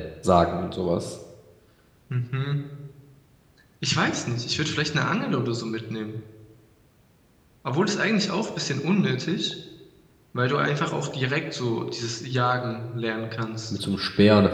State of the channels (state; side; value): identical; both; correlation 1.00